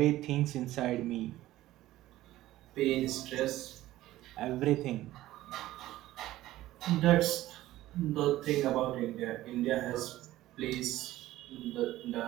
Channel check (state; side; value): quieter; left; 15.5 dB